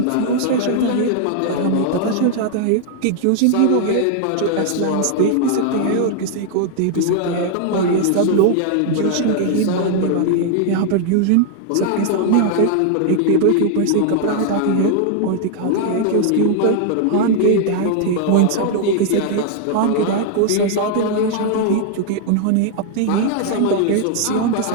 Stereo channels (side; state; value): both; different; correlation 0.00